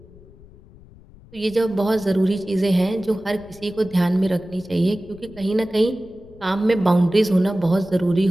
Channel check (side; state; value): left; noise; rumble, 23 dB below the sound